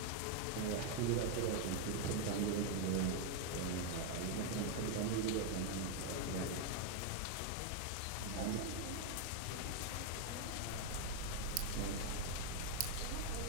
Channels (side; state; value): both; different; correlation 0.01